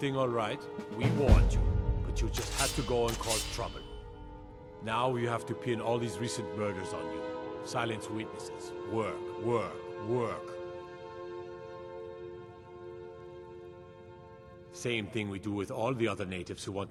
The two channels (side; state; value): both; identical; correlation 1.00